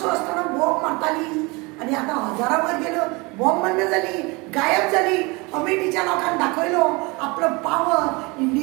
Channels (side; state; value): left; quieter; 26.4 dB